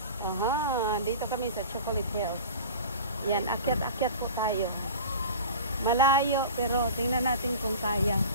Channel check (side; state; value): both; inverted; correlation -0.36